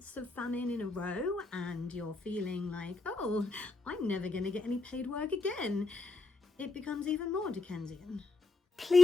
of famine in a row and you're feeling like, oh, I'm never going to get any paid work again, it becomes even more Dickensian.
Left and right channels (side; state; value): right; quieter; 3.4 dB